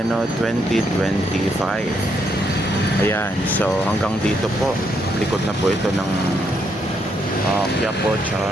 2025. Ayan, so hanggang dito po, likod na po ito ng Quiapo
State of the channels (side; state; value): both; normal; correlation 0.76